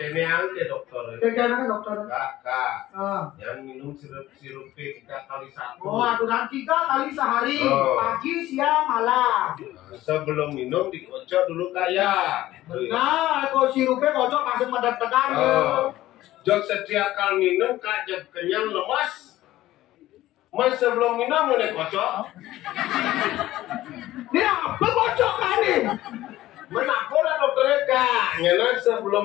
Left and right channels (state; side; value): quieter; right; 15.4 dB